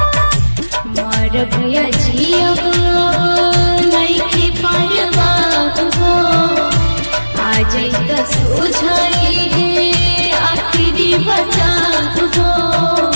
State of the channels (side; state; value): both; inverted; correlation -1.00